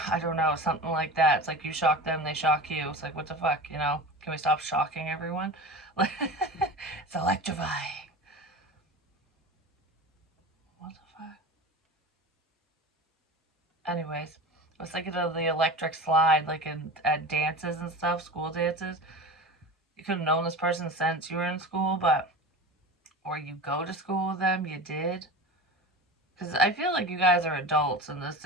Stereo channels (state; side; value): normal; both; correlation 0.32